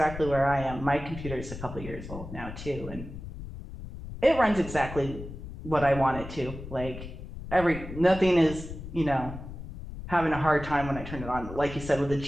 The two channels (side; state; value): left; noise; rumble, 11 dB below the sound